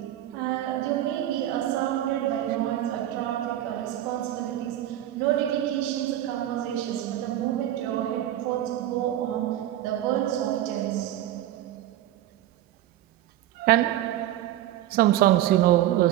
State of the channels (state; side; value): quieter; left; 13.1 dB